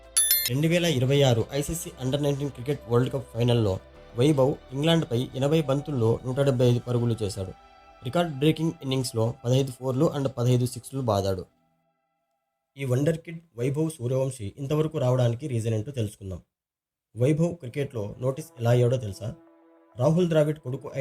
2026 ICC under-19 cricket world cup ఫైనల్లో వైభవ్ ఇంగ్లాండ్పై 80 బంతుల్లో 175 పరుగులు చేశాడు. రికార్డ్ బ్రేకింగ్ ఇన్నింగ్స్లో 15 ఫోర్లు అండ్ 15 సిక్స్లు బాదాడు. ఈ వండర్ కిడ్ వైభవ్ సూర్యవంశి ఇంతవరకు రావడానికి రీజన్ ఏంటో తెలుసుకుందాం. వైభవ్ క్రికెట్లో నోటీస్ ఎలా అయ్యాడో తెలుసా? రాహుల్ ద్రావిడ్ కొడుకు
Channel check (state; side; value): identical; both; correlation 1.00